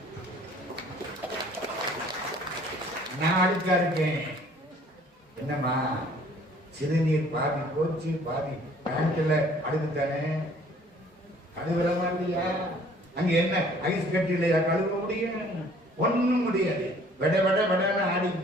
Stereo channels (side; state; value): both; normal; correlation 0.56